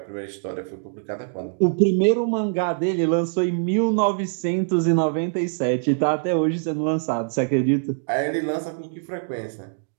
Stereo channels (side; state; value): left; silent; digital silence